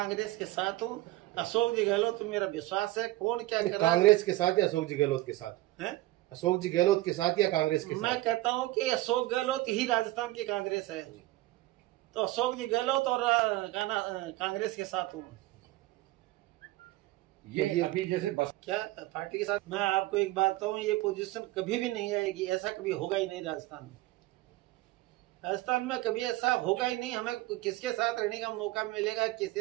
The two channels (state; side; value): quieter; left; 17.9 dB